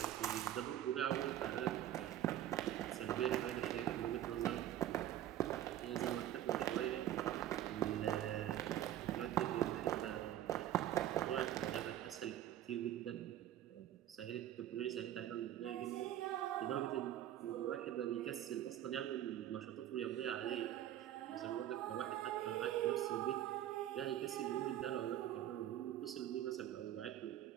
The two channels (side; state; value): left; quieter; 12.2 dB